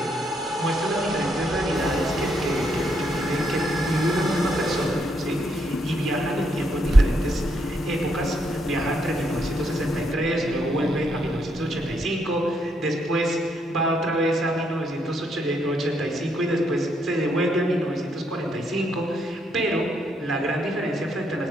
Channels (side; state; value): both; normal; correlation 0.75